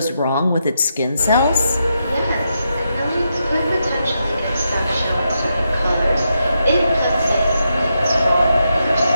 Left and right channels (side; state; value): both; inverted; correlation -0.83